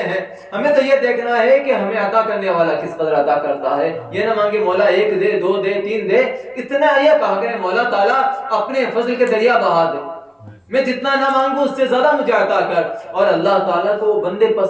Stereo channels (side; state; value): both; identical; correlation 1.00